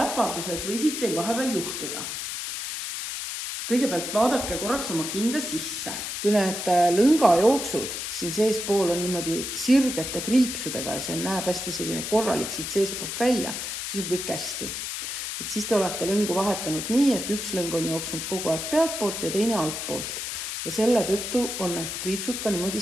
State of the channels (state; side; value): noise; left; hiss, 5 dB below the sound